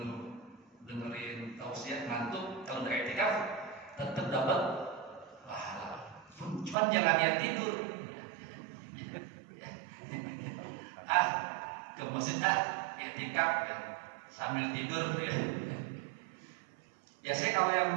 dengerin tausiah, ngantuk, kalau udah i'tikaf tetap dapat pahala. Cuman jangan niat tidur. Ke masjid i'tikaf sambil tidur ya. Biasanya kalau yang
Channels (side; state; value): left; drops out; at 6.8 s